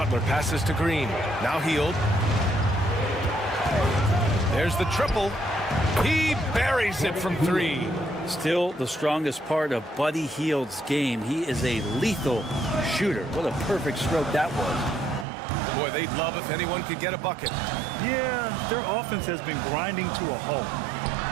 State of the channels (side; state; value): left; drops out; at 15.2 s